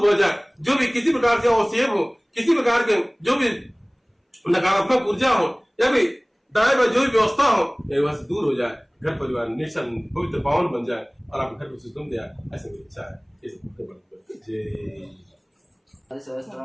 हो जाए, जो भी किसी प्रकार से अवसेब हो, किसी प्रकार के जो भी नकारात्मक ऊर्जा हो, या फिर दाएं जो भी व्यवस्था हो, वहां से दूर हो जाए, घर परिवार निश्चल पवित्र पावन बन जाए और आप घर को सुगम दिया, ऐसे मेरी इच्छा है। जय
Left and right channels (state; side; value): identical; both; correlation 1.00